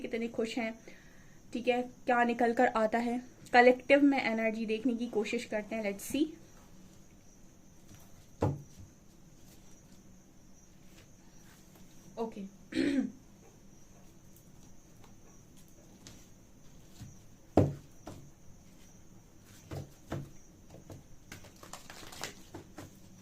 खुश हैं। ठीक है, क्या निकल कर आता है। कलेक्टिव में एनर्जी देखने की कोशिश करते हैं। Let's see. Okay,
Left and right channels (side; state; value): both; identical; correlation 1.00